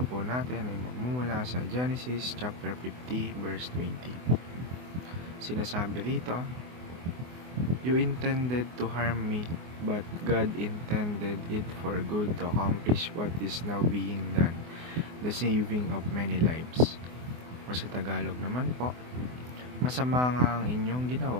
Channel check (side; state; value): left; late; 24 ms